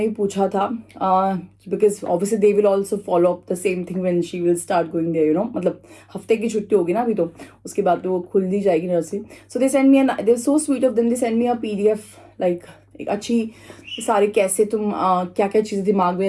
भी पूछा था, because obviously they will also follow up the same thing when she will start going there, you know, मतलब हफ्ते की छुट्टी होगी ना अभी, तो उसके बाद तो वो खुल दी जाएगी nursery. So they send me they so sweet of them, they send me a PDF, like एक अच्छी सारे कैसे तुम क्या क्या चीज़ें दिमाग में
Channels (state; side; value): identical; both; correlation 1.00